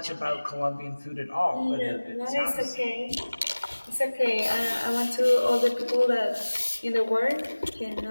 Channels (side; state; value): both; inverted; correlation -1.00